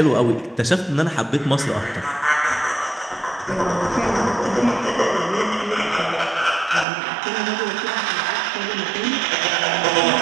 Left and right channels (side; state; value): left; drops out; at 6.9 s